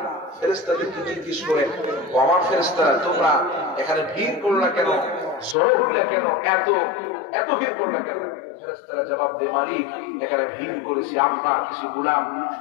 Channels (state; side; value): drops out; right; at 5.6 s